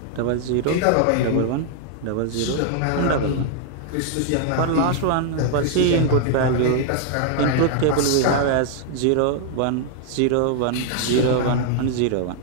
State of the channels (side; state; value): both; different; correlation 0.00